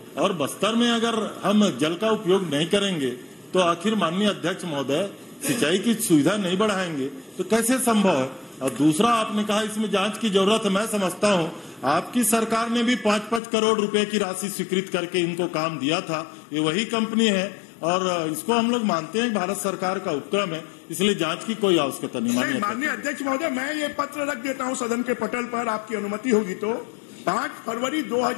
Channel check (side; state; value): right; drops out; at 13.4 s